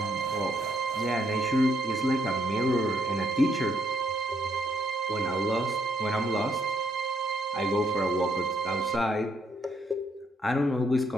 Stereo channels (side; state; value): both; normal; correlation 0.73